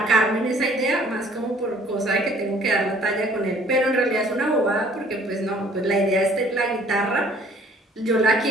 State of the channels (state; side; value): normal; both; correlation 0.56